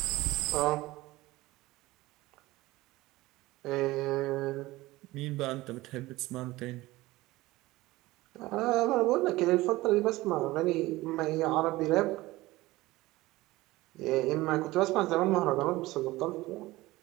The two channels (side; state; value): left; quieter; 19.0 dB